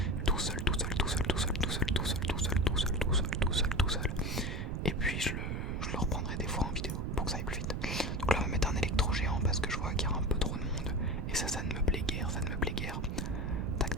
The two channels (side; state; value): right; noise; rumble, 2 dB below the sound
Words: tout seul. Et puis je le reprendrai des fois en vidéo pour que ça aille plus vite. Donc là on va mettre un électro géant parce que je vois qu'il y a un peu trop de monde. Et ça ne me plaît guère,